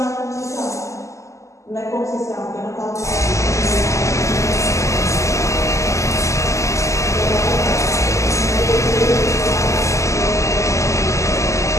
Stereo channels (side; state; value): right; late; 0.15 ms